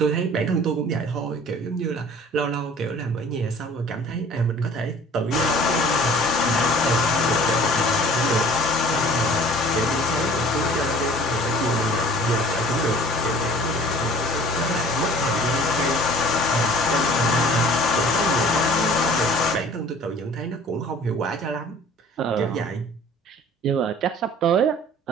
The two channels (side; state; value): both; normal; correlation 0.49